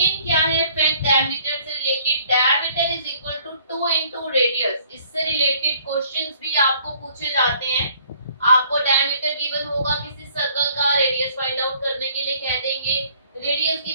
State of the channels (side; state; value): both; inverted; correlation -0.60